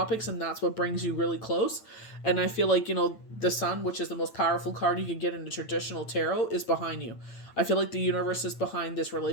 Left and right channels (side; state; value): right; late; 8.9 ms